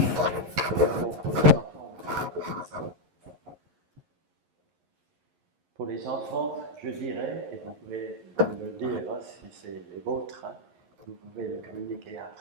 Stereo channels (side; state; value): left; late; 11 ms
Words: Pour les enfants, je dirais, et vous pouvez le dire hein, si c'est les vôtres, hein, vous pouvez le communiquer